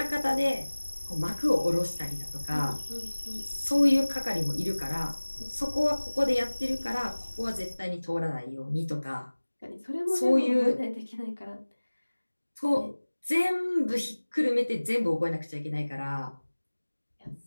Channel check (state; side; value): inverted; both; correlation -1.00